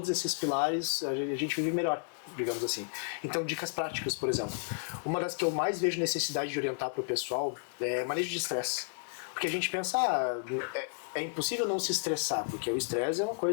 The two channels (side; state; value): right; silent; 56 dB below the other